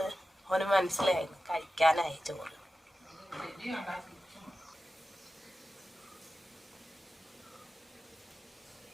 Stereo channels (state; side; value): normal; both; correlation 0.93